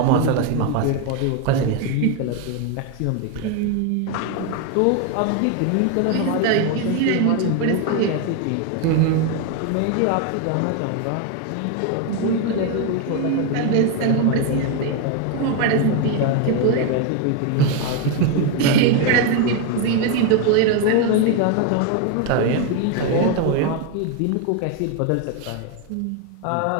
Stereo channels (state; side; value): different; both; correlation 0.01